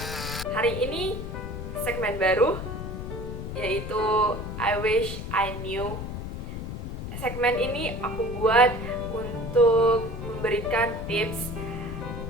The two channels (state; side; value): noise; left; rumble, 6 dB below the sound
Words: Hari ini segmen baru, yaitu I Wish I Knew. Segmen ini aku buat untuk memberikan tips